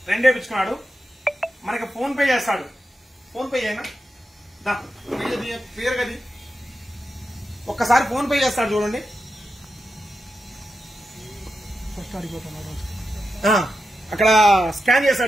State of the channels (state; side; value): normal; both; correlation 0.89